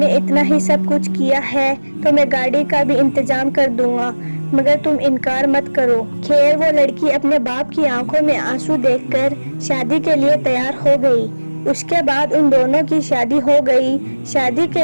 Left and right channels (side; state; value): both; inverted; correlation -1.00